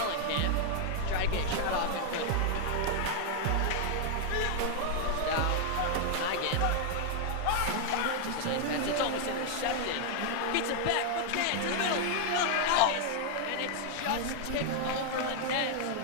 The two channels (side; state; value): both; different; correlation 0.00